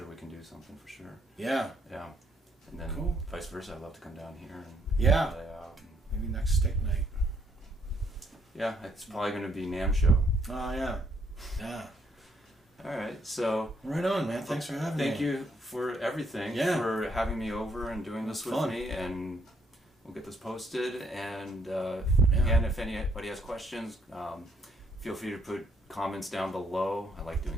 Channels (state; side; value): normal; both; correlation 0.70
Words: we can do something for sure. Yeah. Yeah. And then vice versa, I'd love to come down here and play out. Maybe next stick night. Yeah, it's probably going to be NAMM show. Oh, yeah. Yeah. All right, so... Right on, man. Thanks for having me. Thank you for everything, for having me over and doing this with me, and we'll get this posted. And again, if anybody has questions, feel free to put comments down below. I like